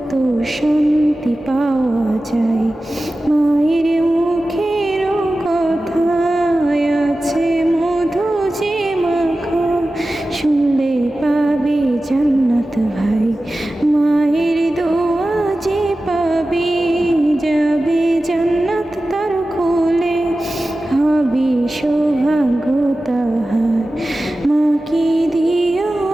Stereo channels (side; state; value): both; normal; correlation 0.95